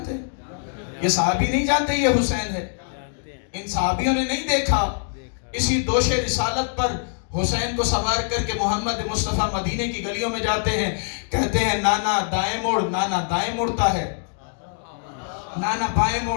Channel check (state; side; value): silent; right; digital silence